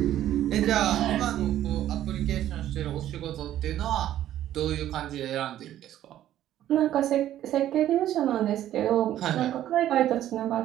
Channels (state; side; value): quieter; left; 12.4 dB